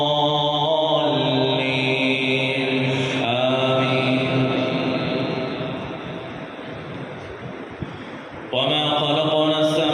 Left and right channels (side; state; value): both; identical; correlation 1.00